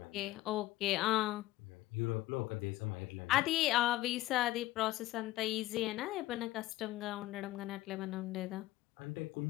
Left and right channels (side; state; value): right; quieter; 16.7 dB